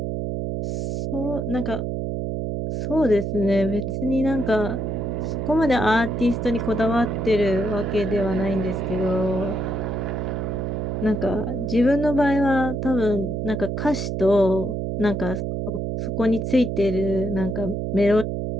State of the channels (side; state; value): right; noise; hum, 2 dB below the sound